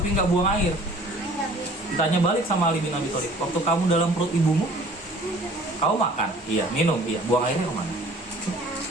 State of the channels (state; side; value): normal; both; correlation 0.51